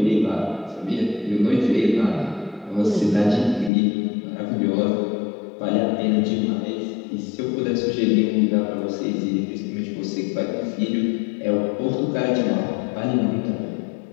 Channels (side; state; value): right; drops out; at 3.7 s